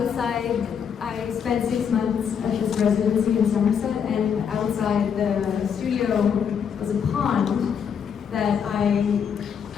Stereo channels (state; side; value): quieter; right; 7.4 dB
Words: I spent 6 months at this residency in Somerset, and outside the studio was a pond that I